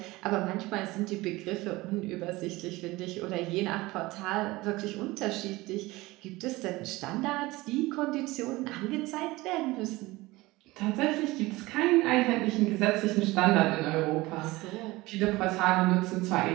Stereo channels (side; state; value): left; quieter; 20.4 dB